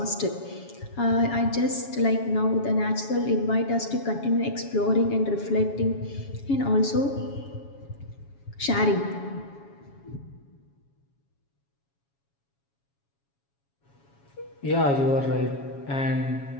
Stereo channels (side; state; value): right; late; 7.2 ms